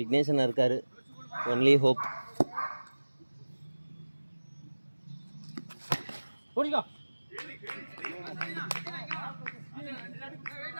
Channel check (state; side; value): inverted; both; correlation -1.00